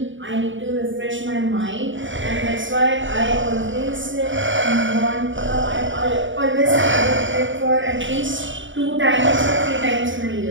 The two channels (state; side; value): late; left; 0.56 ms